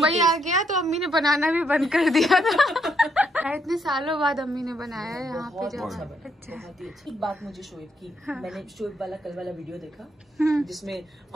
आ गया तो अम्मी ने बनाना भी बंद कर दिया था। इतने सालों बाद अम्मी ने बनाया है यहाँ पे। अच्छा, बहुत ही अच्छी बात मुझे शोएब की। मैंने शोएब वाला कल वाला वीडियो देखा जिसमें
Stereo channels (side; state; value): both; normal; correlation 0.75